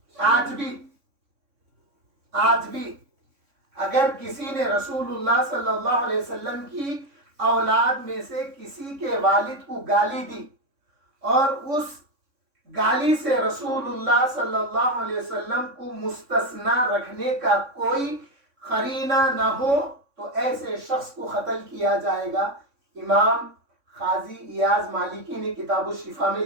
آج بھی اگر کسی نے رسول اللہ صلی اللہ علیہ وسلم کی اولاد میں سے کسی کے والد کو گالی دی اور اس گالی سے رسول اللہ صلی اللہ علیہ وسلم کو مستثنا رکھنے کا کوئی قرینہ نہ ہو تو ایسے شخص کو قتل کیا جائے گا. امام قاضی ایاز مالکی نے کتاب الشفا میں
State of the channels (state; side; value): late; left; 3.6 ms